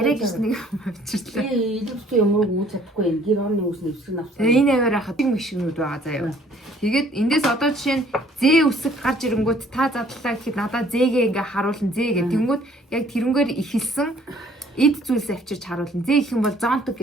гэж нэг авчирлаа. Илүүстэй юмруу үүс чадахгүй юм. Гэр орны үүс нэвсгэн авсан. Энэ аваар хатаг машинууд байгаа заяа. Тэгээд эндээс одоо жишээ нь зээ үсэг гарч ирэнгүүт та задлаа гэхэд надад зээгээ ингээ харуулна зээ гэх. Тэнгүүд яг тэрнгээр ихэлсэн эд зүйлс авчирч харуулна. Зээ их юм бол зонтог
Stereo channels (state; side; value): normal; both; correlation 0.59